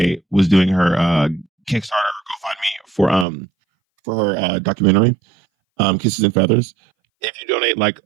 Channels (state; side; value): drops out; left; at 3.2 s